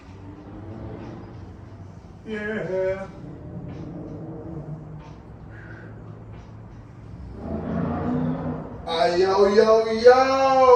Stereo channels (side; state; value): both; identical; correlation 1.00